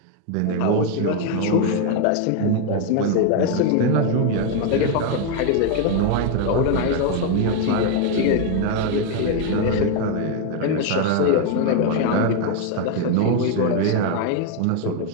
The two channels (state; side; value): different; both; correlation 0.01